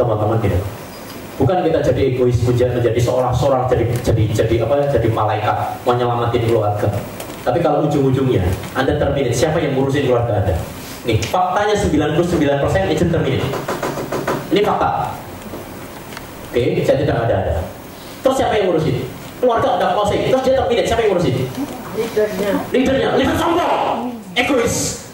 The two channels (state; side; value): identical; both; correlation 1.00